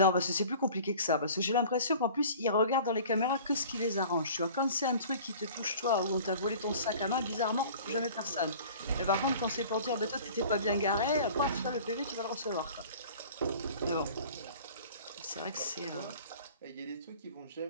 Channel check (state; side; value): inverted; both; correlation -0.45